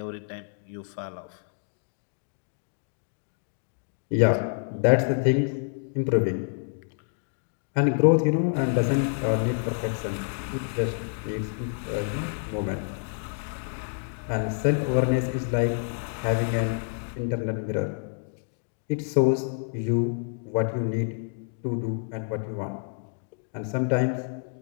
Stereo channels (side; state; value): right; silent; digital silence